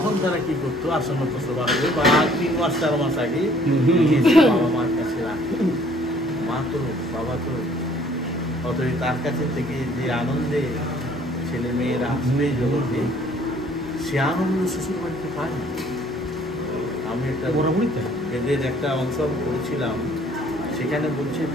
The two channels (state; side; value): normal; both; correlation 0.58